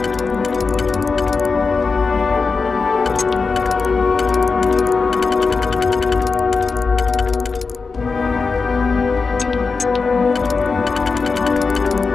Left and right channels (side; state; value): right; quieter; 4.5 dB